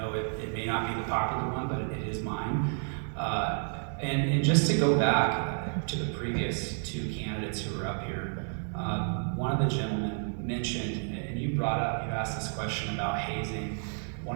it may not be the popular one, but it is mine. And just to go back to the previous two candidates who were up here, one of the gentlemen mentioned, and you asked this question about hazing.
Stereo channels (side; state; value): left; silent; 57 dB below the other